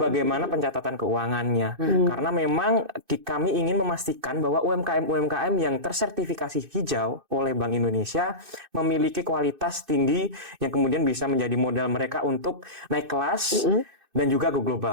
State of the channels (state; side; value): late; left; 2.6 ms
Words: pencatatan keuangannya. Karena memang kami ingin memastikan bahwa UMKM-UMKM yang tersertifikasi hijau oleh Bank Indonesia memiliki kualitas tinggi yang kemudian bisa menjadi modal mereka untuk naik kelas dan juga go